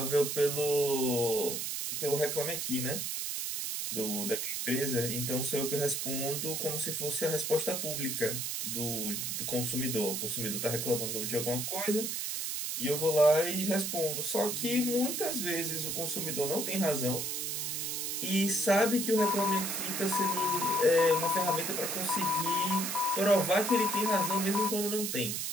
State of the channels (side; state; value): right; noise; hiss, 2 dB below the sound